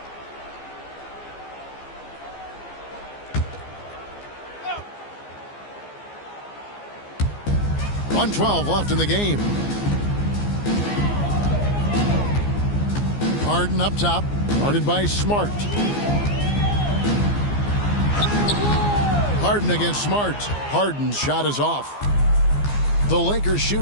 .112 left in the game. Harden up top, guarded by Smart. Harden against Smart. Harden's shot is off. The Lakers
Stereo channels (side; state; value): right; late; 15 ms